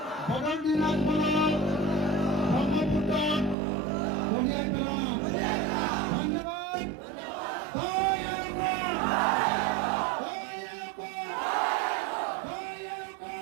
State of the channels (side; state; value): left; drops out; at 3.6 s